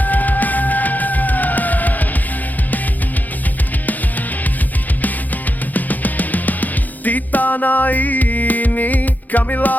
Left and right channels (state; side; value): late; right; 0.082 ms